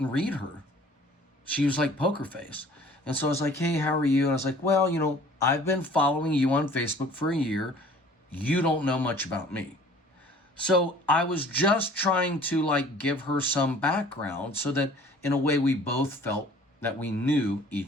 read her. She was like poker face. And so I was like, hey, how are you? And I was like, well, you know, I've been following you on Facebook for a year. You don't know much about me. So I was just trying to like give her some background so that in a way we both felt that we knew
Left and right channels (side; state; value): both; normal; correlation 0.50